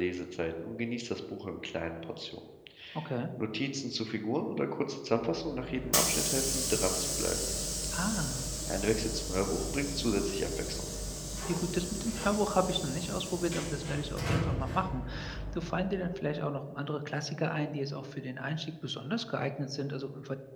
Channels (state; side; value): identical; both; correlation 1.00